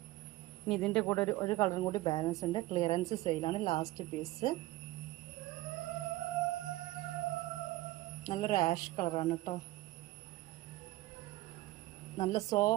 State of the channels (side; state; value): left; quieter; 18.1 dB